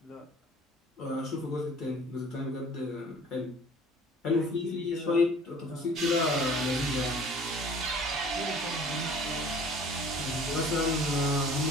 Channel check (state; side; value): normal; both; correlation 0.49